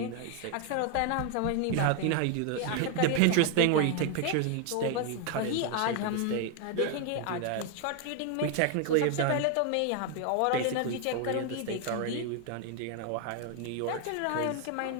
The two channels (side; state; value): both; different; correlation 0.01